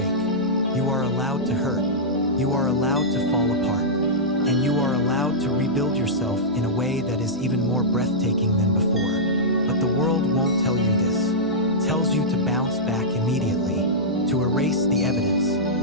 You are allowed to hurt. You are allowed to fall apart. And you are allowed to rebuild yourself in a way that is even more breathtaking than before. But the world won't tell you this. It tells you to bounce back immediately, to erase the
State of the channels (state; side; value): normal; both; correlation -0.12